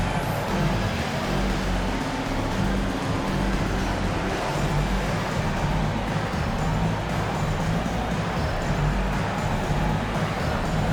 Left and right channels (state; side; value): identical; both; correlation 1.00